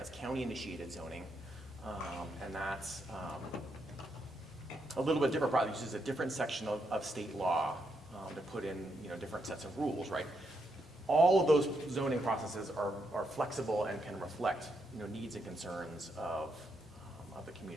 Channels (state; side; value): normal; both; correlation 0.80